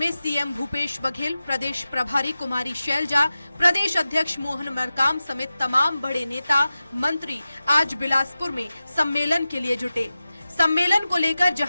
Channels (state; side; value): inverted; both; correlation -0.94